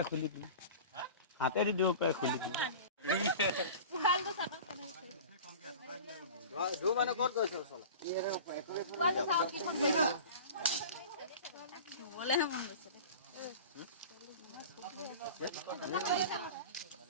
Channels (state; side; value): inverted; both; correlation -0.37